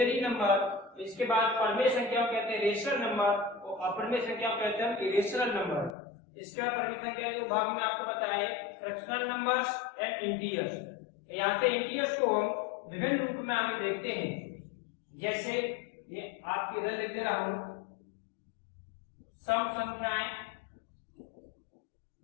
नंबर, इसके बाद परिमेय संख्या को कहते हैं रेशनल नंबर और अपरिमेय संख्या को कहते हैं इरेशनल नंबर। इसके बाद परिमेय संख्या के भाग में आपको बताए फ्रैक्शनल नंबर्स एंड इंटीजर्स। यहाँ पे इंटीजर्स को हम विभिन्न रूप में आगे देखते हैं। जैसे ये आपके इधर लिख दे रहा हूं, सम संख्याएं,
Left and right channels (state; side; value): drops out; right; at 6.0 s